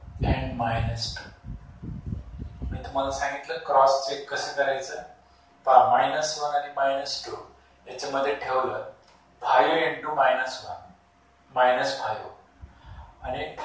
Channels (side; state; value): both; identical; correlation 1.00